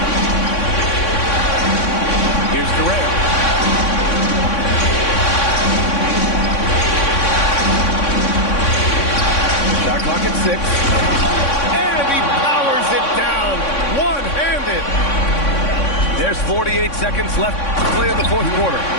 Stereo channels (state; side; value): late; right; 3.6 ms